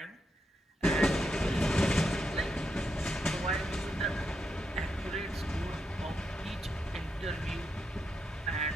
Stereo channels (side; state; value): both; normal; correlation 0.83